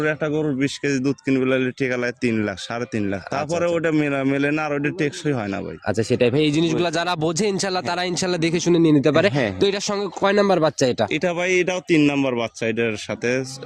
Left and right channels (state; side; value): identical; both; correlation 1.00